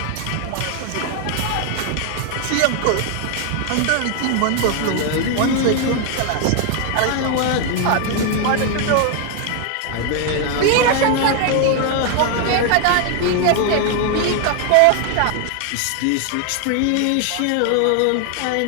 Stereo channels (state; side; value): different; both; correlation 0.00